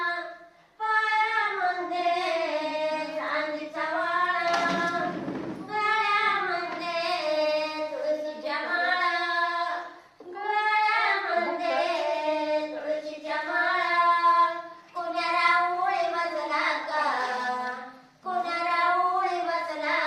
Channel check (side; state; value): both; identical; correlation 1.00